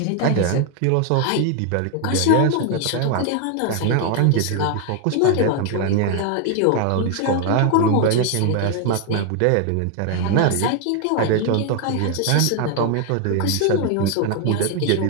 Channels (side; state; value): both; different; correlation 0.01